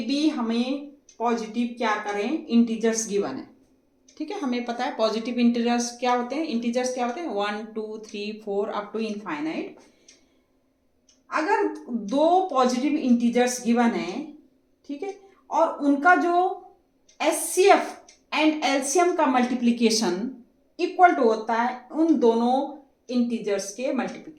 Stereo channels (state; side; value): identical; both; correlation 1.00